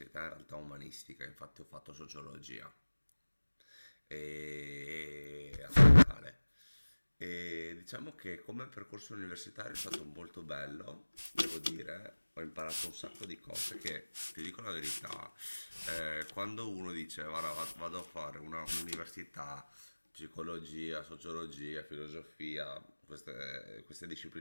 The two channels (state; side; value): inverted; both; correlation -1.00